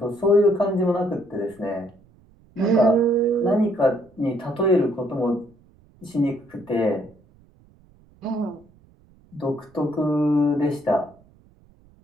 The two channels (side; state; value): right; noise; rumble, 29 dB below the sound